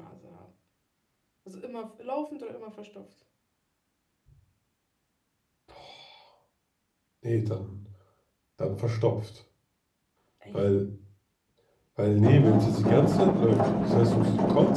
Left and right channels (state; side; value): identical; both; correlation 1.00